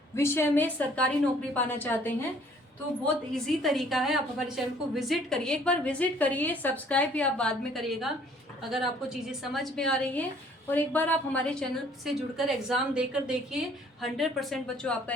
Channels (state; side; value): normal; both; correlation 0.58